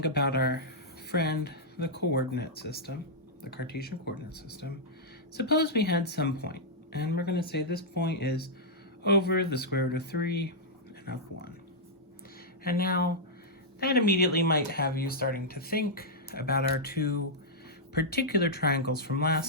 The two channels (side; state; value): both; normal; correlation -0.08